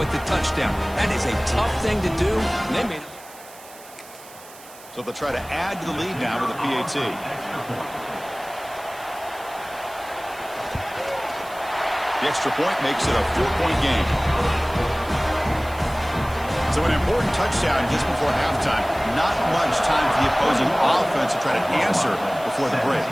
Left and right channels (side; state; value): right; noise; hiss, 20 dB below the sound